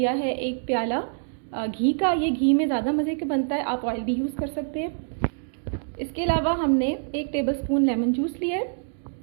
है 1 प्याला घी का। ये घी में ज़्यादा मज़े का बनता है, आप ऑयल भी यूज़ कर सकते हैं। इसके अलावा हमने 1 टेबलस्पून लेमन जूस लिया है।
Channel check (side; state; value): left; silent; digital silence